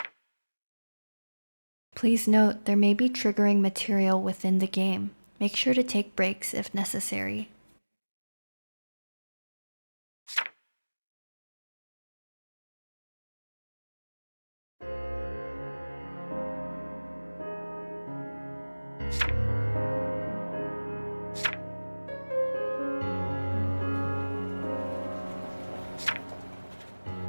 Please note, there may be triggering material within the game. Make sure to take breaks if necessary.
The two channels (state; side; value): inverted; both; correlation -1.00